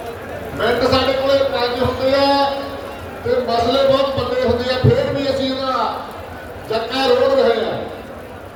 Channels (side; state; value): both; identical; correlation 1.00